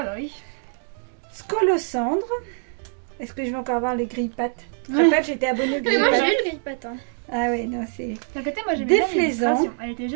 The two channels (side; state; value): left; silent; digital silence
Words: bah oui. Scolocendre. Est-ce que je vais encore avoir les grille-pattes? Je te rappelle, j'étais abonnée aux Mais moi grille-pattes. j'ai eu le grille-patte. Hein. Ah ouais, non, c'est... D'un côté, moi j'aimais bien Déflaisant. l'illustration. Elle était